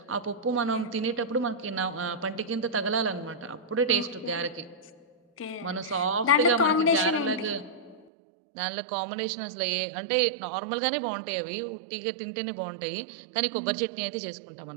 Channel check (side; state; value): left; drops out; at 8.1 s